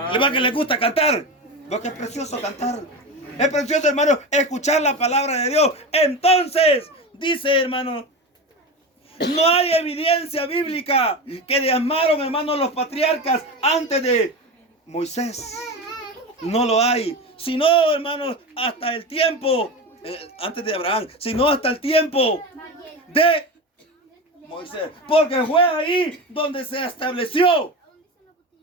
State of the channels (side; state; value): both; normal; correlation 0.24